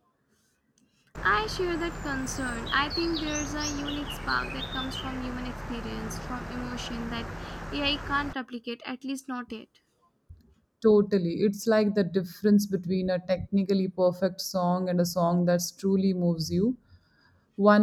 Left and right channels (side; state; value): both; identical; correlation 1.00